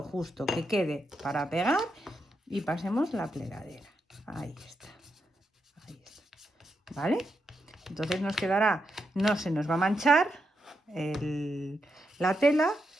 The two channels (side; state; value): both; normal; correlation 0.84